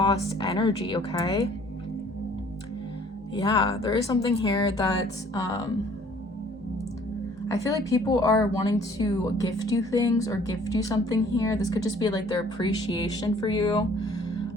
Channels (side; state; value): both; normal; correlation 0.56